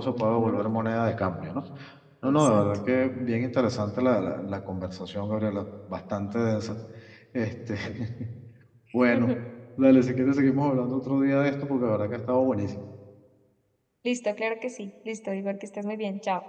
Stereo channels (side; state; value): both; identical; correlation 1.00